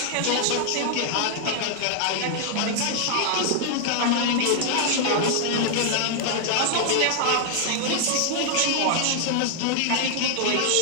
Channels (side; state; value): both; different; correlation 0.00